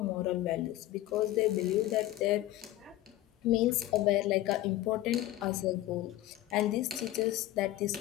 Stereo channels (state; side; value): quieter; right; 15.2 dB